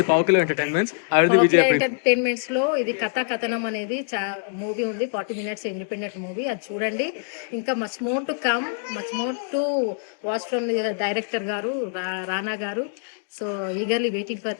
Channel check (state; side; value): silent; right; digital silence